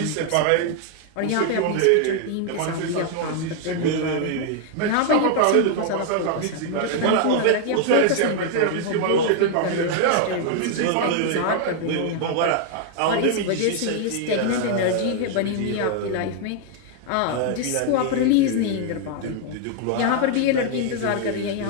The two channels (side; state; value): both; different; correlation 0.00